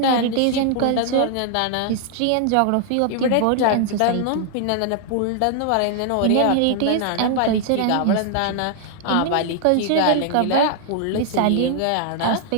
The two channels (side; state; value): both; different; correlation 0.00